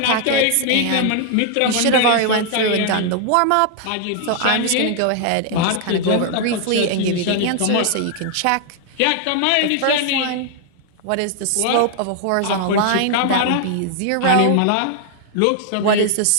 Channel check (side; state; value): both; different; correlation 0.00